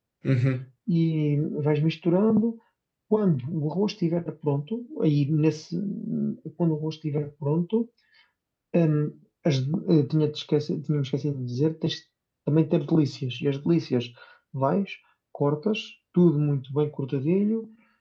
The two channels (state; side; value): identical; both; correlation 1.00